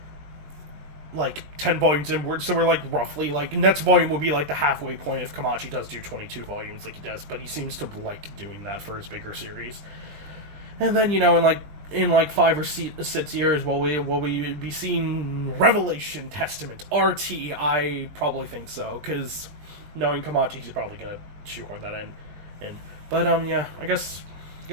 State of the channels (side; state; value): left; late; 20 ms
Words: 10 volumes inward, so we're like roughly like next volume will be like the halfway point if Kamachi does do 22 volumes like he does, but he seems to like doing that for his bigger series. And then, in 5 or 6 years, will we be seeing Revelation Testament RT? I probably think so, because knowing Kamachi, he's probably gonna shoehorn that in. But yeah, I guess